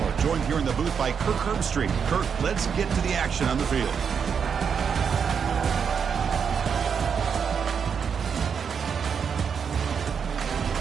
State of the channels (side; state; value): left; quieter; 6.8 dB